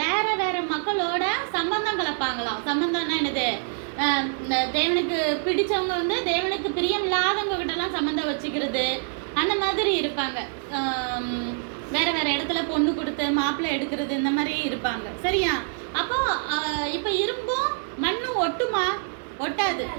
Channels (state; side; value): silent; left; 61 dB below the other